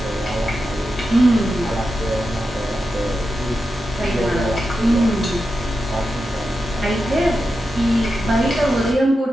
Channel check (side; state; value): both; normal; correlation 0.89